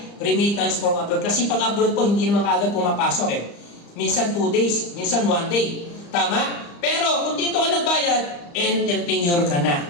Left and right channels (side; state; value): right; late; 35 ms